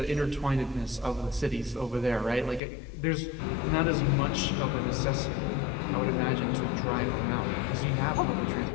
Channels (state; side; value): drops out; right; at 2.6 s